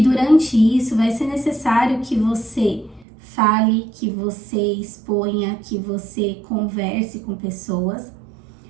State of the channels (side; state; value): left; drops out; at 3.1 s